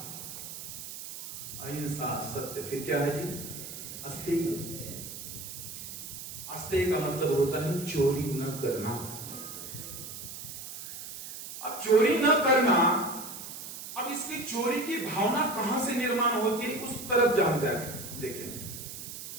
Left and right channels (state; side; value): noise; right; hiss, 10 dB below the sound